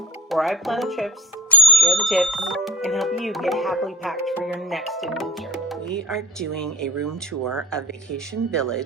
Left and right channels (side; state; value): both; normal; correlation 0.36